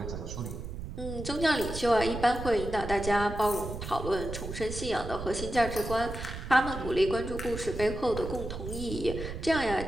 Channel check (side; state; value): right; noise; rumble, 8 dB below the sound